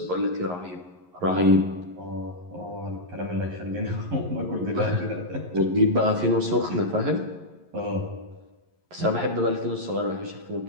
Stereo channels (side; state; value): left; late; 11 ms